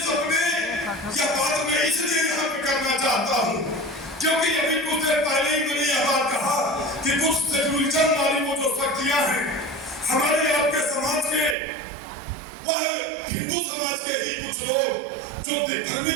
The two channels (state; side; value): drops out; left; at 11.6 s